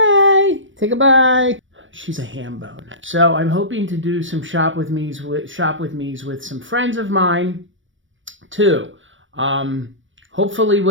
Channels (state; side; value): late; left; 0.56 ms